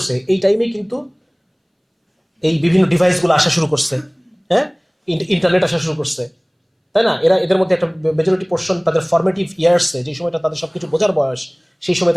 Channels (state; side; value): identical; both; correlation 1.00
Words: এই টাইমে কিন্তু এই বিভিন্ন ডিভাইসগুলো আসা শুরু করছে। হ্যাঁ, ইন্টারনেট আসা শুরু করছে, তাই না? এদের মধ্যে একটা মেজরিটি পোর্শন তাদের ফরমেটিভ ইয়ার্সে, যে সময়টা তাদের সবকিছু বোঝার বয়স, সেই সময়